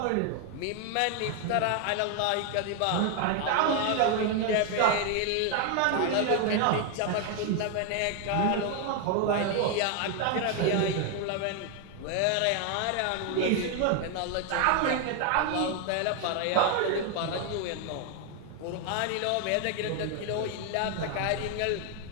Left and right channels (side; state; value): both; different; correlation 0.01